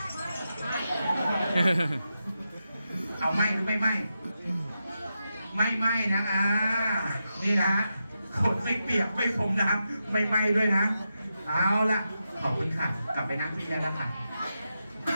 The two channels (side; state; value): both; inverted; correlation -0.88